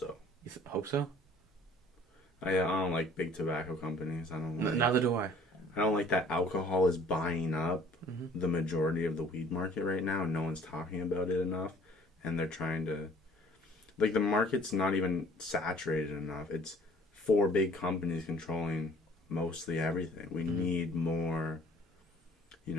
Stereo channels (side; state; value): both; normal; correlation 0.54